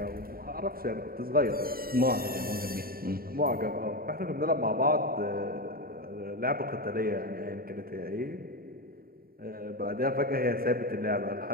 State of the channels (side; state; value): left; late; 0.43 ms